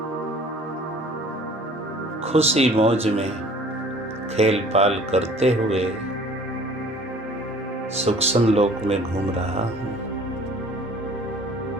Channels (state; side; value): normal; both; correlation 0.50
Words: खुशी मौज में खेल पाल करते हुए सूक्ष्म लोक में घूम रहा हूँ।